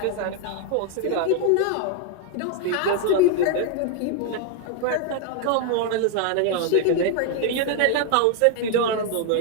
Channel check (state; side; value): different; both; correlation 0.00